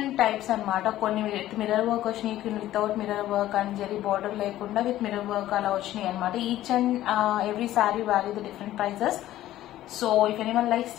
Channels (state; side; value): quieter; right; 14.0 dB